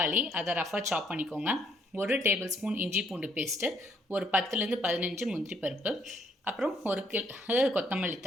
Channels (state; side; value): normal; both; correlation 0.69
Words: அதை ரஃபாக சாப் பண்ணிக்கோங்க. 1 டேபிள் ஸ்பூன் இஞ்சி பூண்டு பேஸ்ட்டு, ஒரு 10லேருந்து 15 முந்திரி பருப்பு, அப்புறம் 1 கொத்தமல்லி